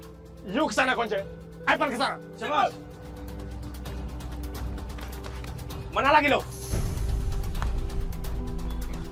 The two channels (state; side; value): identical; both; correlation 1.00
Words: You kesana, Konce. Ivan kesana. Siapa? Mana lagi lo?